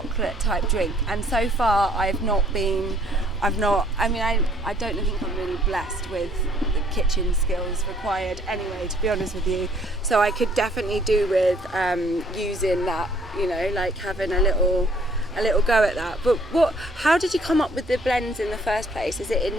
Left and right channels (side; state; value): both; normal; correlation 0.62